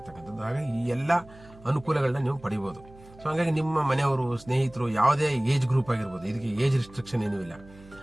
ಹಾಗಾಗಿ ಈ ಎಲ್ಲ ಅನುಕೂಲಗಳನ್ನ ನೀವು ಪಡಿಬಹುದು. ಸೊ ಹಾಗಾಗಿ ನಿಮ್ಮ ಮನೆಯವರು, ಸ್ನೇಹಿತರು, ಯಾವುದೇ ಏಜ್ ಗ್ರೂಪ್ ಆಗಿರ್ಬೋದು, ಇದಕ್ಕೆ ಏಜ್ ರಿಸ್ಟ್ರಿಕ್ಷನ್ ಏನೂ ಇಲ್ಲ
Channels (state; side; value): noise; right; hum, 22 dB below the sound